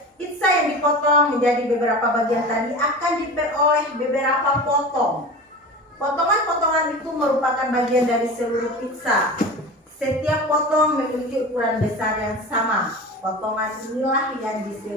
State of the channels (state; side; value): normal; both; correlation 0.32